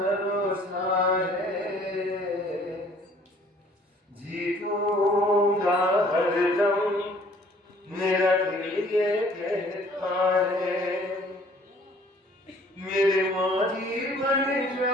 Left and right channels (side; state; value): both; normal; correlation 0.56